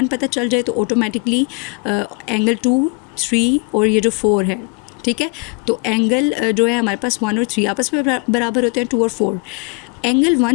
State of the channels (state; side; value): quieter; right; 32.7 dB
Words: पता चल जाए तो ऑटोमेटिकली एंगल 2, 3 और ये जो 4 है, ठीक है, तो एंगल जो है हमारे पास 1 और 3 आपस में बराबर होते हैं, 2 और 4। एंगल